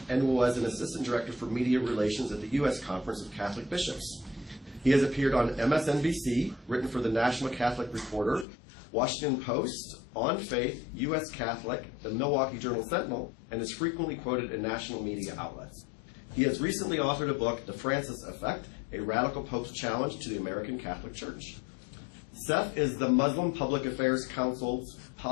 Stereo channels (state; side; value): drops out; right; at 8.5 s